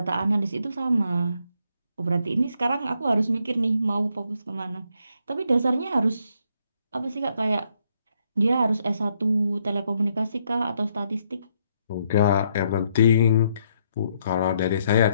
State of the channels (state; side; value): inverted; both; correlation -0.74